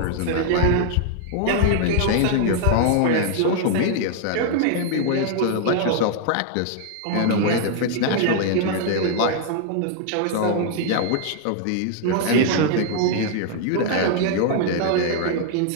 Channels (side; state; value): both; different; correlation 0.00